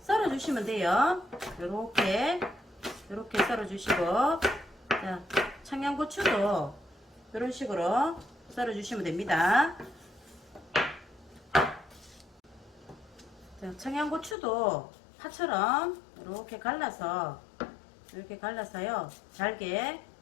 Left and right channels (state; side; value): drops out; right; at 14.4 s